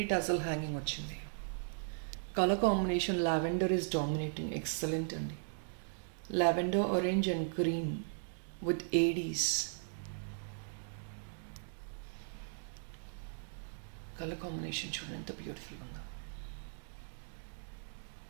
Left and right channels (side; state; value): left; silent; digital silence